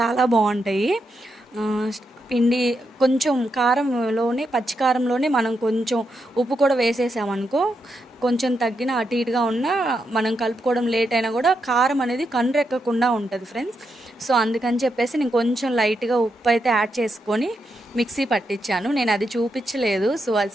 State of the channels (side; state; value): both; normal; correlation 0.83